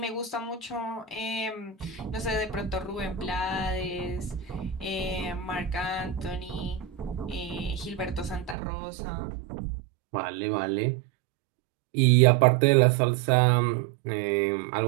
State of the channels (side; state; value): left; drops out; at 8.6 s